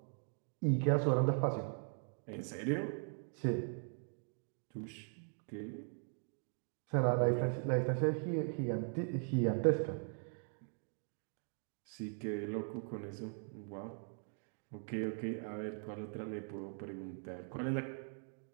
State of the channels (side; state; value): left; silent; 51 dB below the other